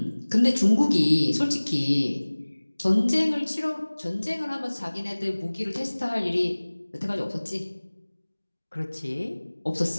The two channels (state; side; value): inverted; both; correlation -1.00